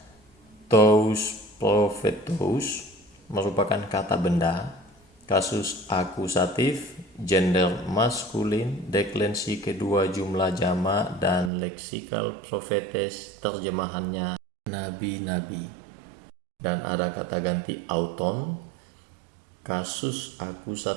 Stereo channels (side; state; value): left; drops out; at 11.5 s